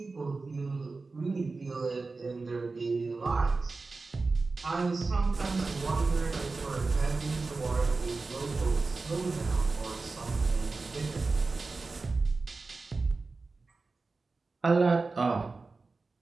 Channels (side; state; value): left; quieter; 3.8 dB